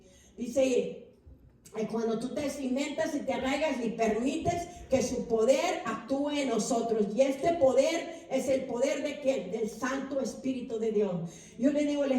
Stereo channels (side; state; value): both; identical; correlation 1.00